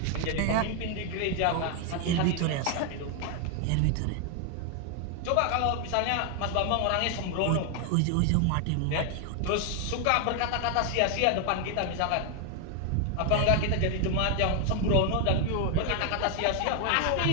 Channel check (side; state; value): both; different; correlation 0.01